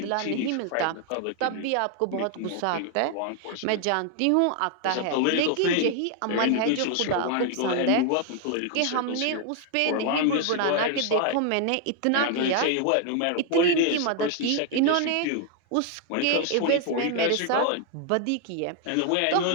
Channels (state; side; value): different; both; correlation 0.00